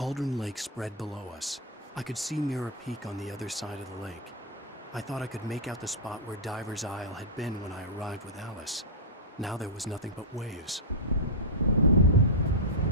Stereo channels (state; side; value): normal; both; correlation -0.09